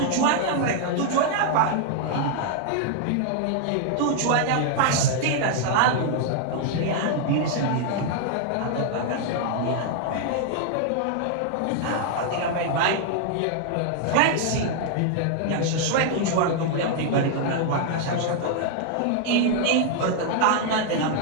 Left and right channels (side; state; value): both; different; correlation 0.00